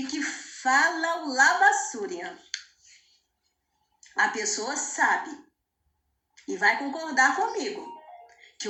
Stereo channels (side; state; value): both; identical; correlation 1.00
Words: que fala o labassúria, a pessoa sabe e vai concordar comigo que